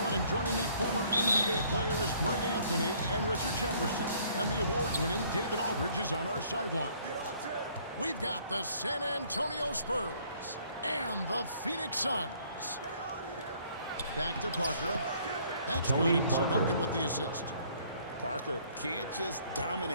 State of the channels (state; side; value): inverted; both; correlation -0.60